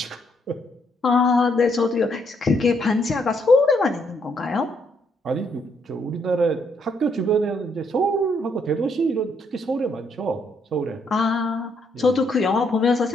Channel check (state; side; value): normal; both; correlation 0.73